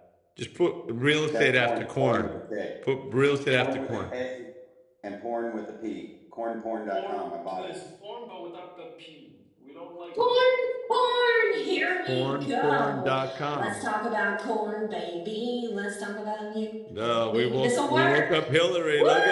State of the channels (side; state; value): both; identical; correlation 1.00